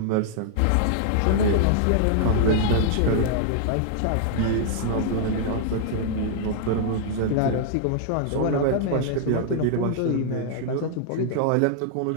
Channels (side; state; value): both; different; correlation -0.01